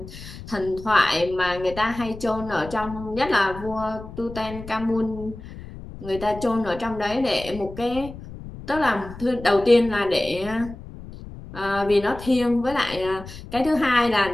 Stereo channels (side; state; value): left; noise; rumble, 14 dB below the sound